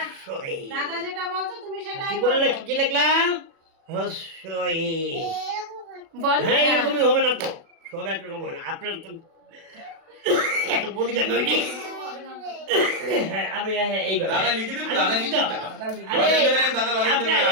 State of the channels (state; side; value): late; left; 36 ms